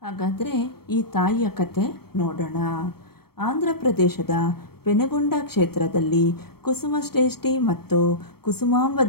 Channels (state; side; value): late; right; 0.95 ms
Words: ಹಾಗಾದರೆ ಈ ತಾಯಿಯ ಕತೆ ನೋಡೋಣ. ಆಂಧ್ರ ಪ್ರದೇಶದ ಪೆನುಗೊಂಡ ಕ್ಷೇತ್ರದಲ್ಲಿ ಕುಸುಮಶ್ರೇಷ್ಠಿ ಮತ್ತು ಕುಸುಮಾಂಬ